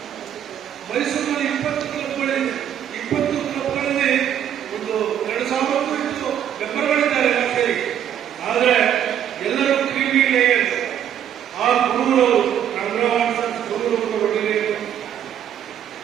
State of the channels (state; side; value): quieter; left; 9.9 dB